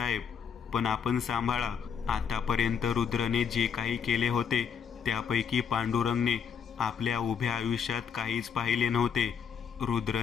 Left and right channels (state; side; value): quieter; right; 7.1 dB